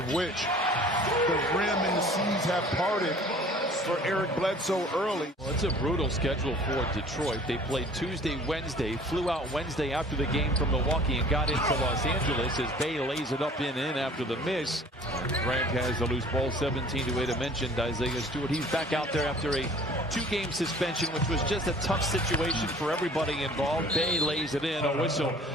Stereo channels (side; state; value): both; normal; correlation 0.50